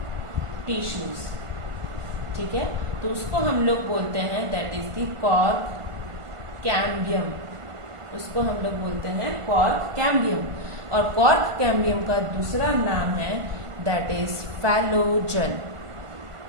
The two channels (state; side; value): late; left; 1.5 ms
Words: टिश्यूज, ठीक है, तो उसको हम लोग बोलते हैं that is the cork cambium, उसको हम लोग बोलते हैं कॉर्क कैम्बियम। और कॉर्क कैम्बियम का दूसरा नाम है दैट इज फैलोजन,